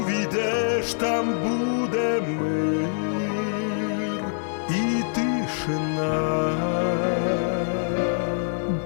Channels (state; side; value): silent; right; digital silence